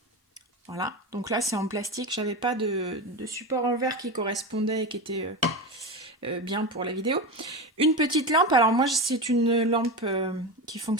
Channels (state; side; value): normal; both; correlation 0.21